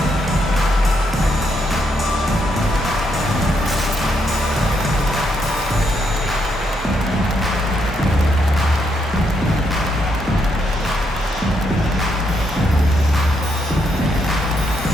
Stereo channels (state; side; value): normal; both; correlation 0.77